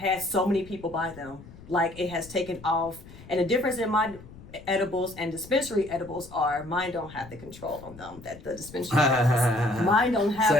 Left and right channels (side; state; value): left; noise; rumble, 19 dB below the sound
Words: so many people buy them. Like, it has taken off. And the difference in my edibles and dispensary edibles are mine don't have the control on them that the dispensary has. Mine don't have